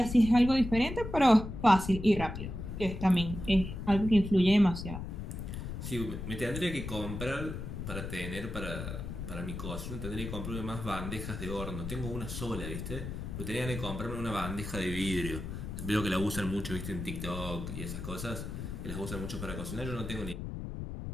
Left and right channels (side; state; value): left; noise; rumble, 7 dB below the sound